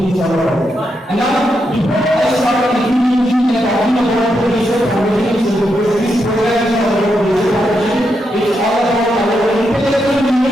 is all about. And now, before I start introducing and talking about the research foundations, this program is all about research foundation. It's all about our intellectual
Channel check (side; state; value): both; normal; correlation 0.83